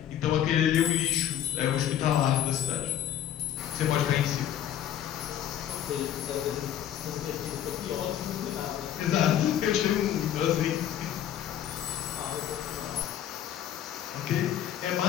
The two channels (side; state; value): right; quieter; 10.8 dB